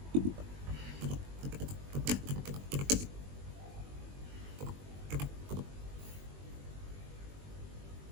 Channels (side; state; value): left; late; 21 ms